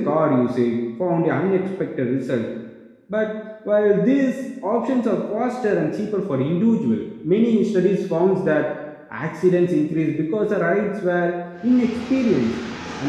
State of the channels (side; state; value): both; identical; correlation 1.00